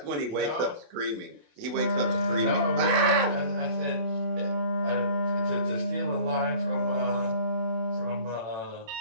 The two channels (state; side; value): late; left; 28 ms